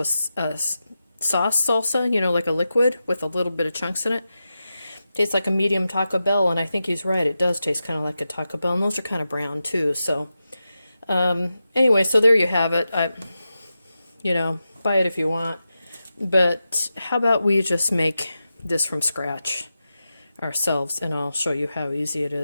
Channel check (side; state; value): both; inverted; correlation -0.91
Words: sauce salsa, you know, like a liquid with a little bit of chunks in it. Tastes like a medium Taco Bell, and I think he's right. It does taste kind of like a Taco Bell, and those are kind of brown too. So, anyway, so there you have it. You know, buy it if you want. But how about we just make this from scratch ourselves, and I'll show you how easy it